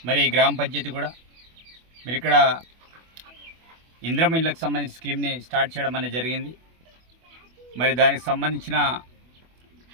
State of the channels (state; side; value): late; left; 24 ms